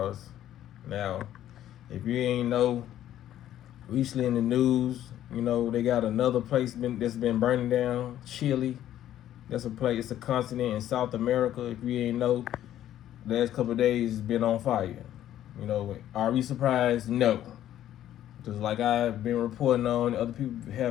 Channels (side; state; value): right; quieter; 12.0 dB